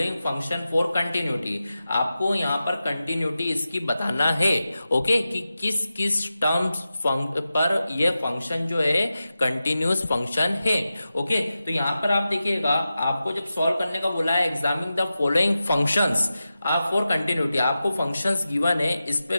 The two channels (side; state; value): both; inverted; correlation -0.93